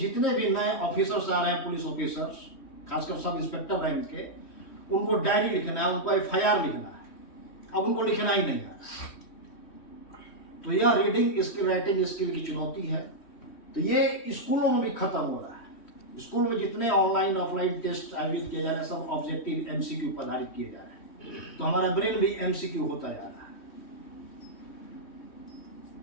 भी नए ऑफिसर्स आ रहे हैं, पुलिस ऑफिसर्स, खासकर सब इंस्पेक्टर रैंक के, उनको डायरी लिखना है, उनको FIR लिखना है, अब उनको लिखना ही नहीं है। तो यह रीडिंग स्किल, राइटिंग स्किल की चुनौती है। तो ये स्कूलों में भी खत्म हो रहा है। स्कूल में जितने ऑनलाइन ऑफलाइन टेस्ट आयोजित किए जा रहे हैं, सब ऑब्जेक्टिव MCQ पर आधारित किए जा रहे हैं, तो हमारा ब्रेन भी MCQ होता जा रहा है।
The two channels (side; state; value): right; late; 3.1 ms